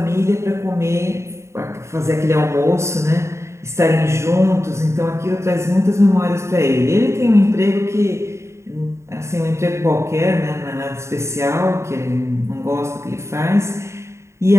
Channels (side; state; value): left; late; 0.14 ms